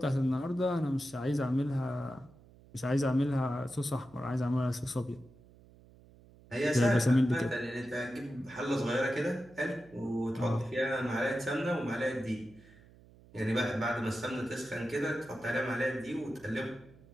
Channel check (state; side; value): noise; right; hum, 24 dB below the sound